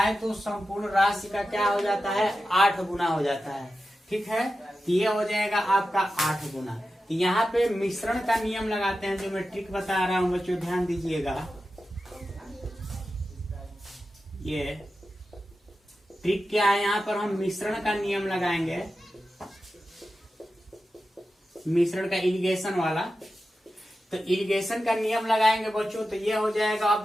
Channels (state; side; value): normal; both; correlation 0.92